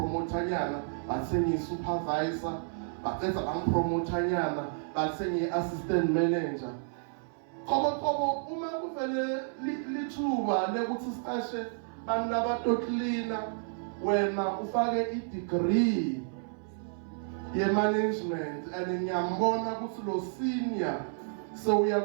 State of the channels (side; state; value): left; silent; 57 dB below the other